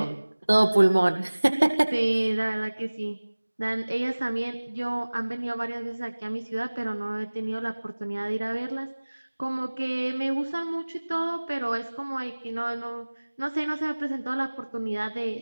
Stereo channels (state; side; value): inverted; both; correlation -1.00